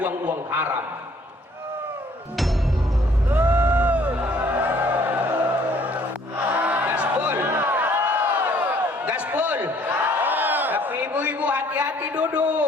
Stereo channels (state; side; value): normal; both; correlation 0.60